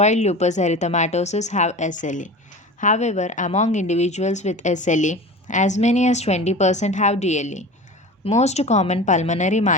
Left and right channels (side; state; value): both; normal; correlation 0.34